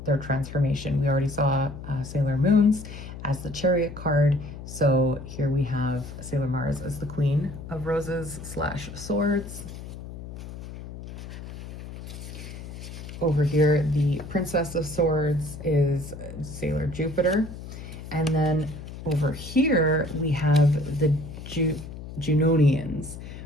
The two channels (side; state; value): left; noise; hum, 12 dB below the sound